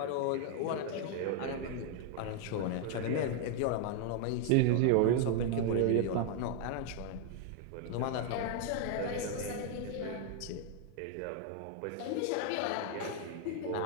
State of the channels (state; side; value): different; both; correlation 0.00